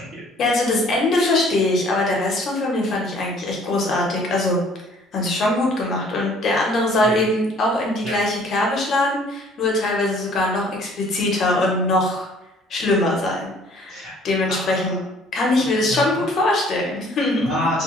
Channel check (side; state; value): both; normal; correlation 0.56